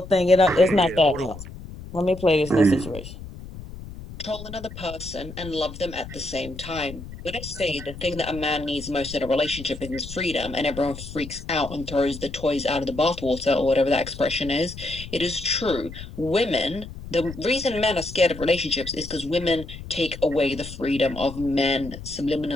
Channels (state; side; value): noise; left; rumble, 13 dB below the sound